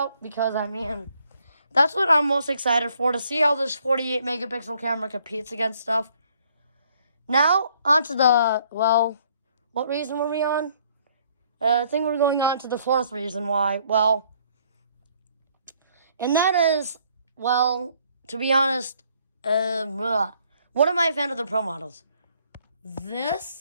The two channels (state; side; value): inverted; both; correlation -0.65